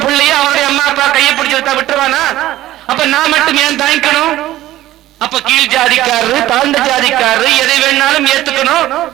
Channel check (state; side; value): quieter; left; 15.0 dB